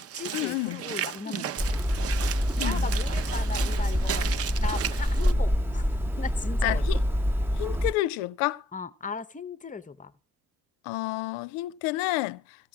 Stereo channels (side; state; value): both; normal; correlation 0.67